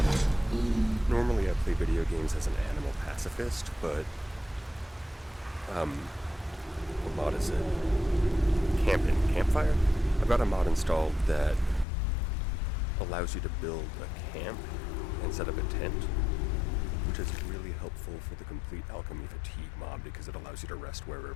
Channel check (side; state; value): right; drops out; at 11.9 s